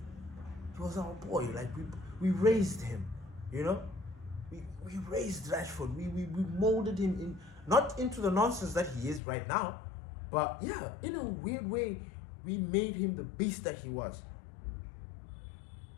He was our boy. Like, we raised him. We raised Rashford. We molded him in, not into the nonsense that he is right now, but yeah, in a weird way, we made him the beast that he was.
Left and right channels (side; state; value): right; drops out; at 9.2 s